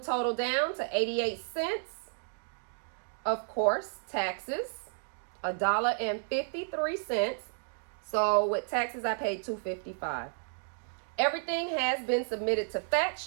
total down to 88 cents. Of course, taxes, $1.53. So with taxes, I paid $2.55. Everything has been submitted to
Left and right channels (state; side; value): silent; left; digital silence